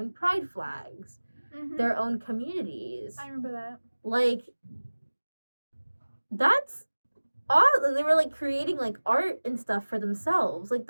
pride flags, their own communities. I remember that. Like that's awesome. They were like creating like art and stuff for themselves. Like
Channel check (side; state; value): both; inverted; correlation -1.00